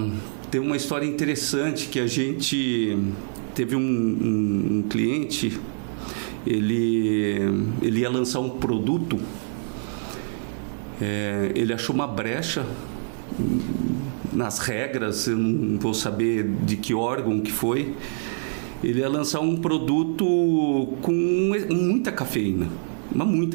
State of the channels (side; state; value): left; silent; 58 dB below the other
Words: temos uma história interessante que a gente teve um cliente, ele ia lançar um produto, ele achou uma brecha nas regras, eu não vou saber de que órgão que foi. Ele ia lançar um produto com muita cafeína,